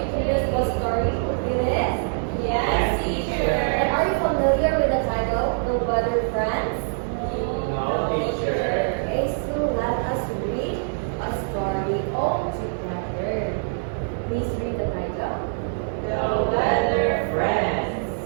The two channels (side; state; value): left; silent; digital silence